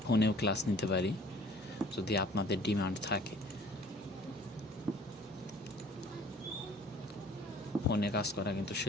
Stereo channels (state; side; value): normal; both; correlation 0.51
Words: ফোনেও ক্লাস নিতে পারি যদি আপনাদের ডিমান্ড থাকে। ফোনে কাজ করা কিন্তু